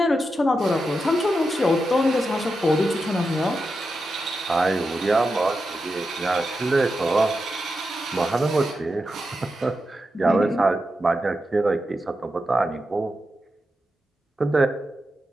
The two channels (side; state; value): both; normal; correlation 0.88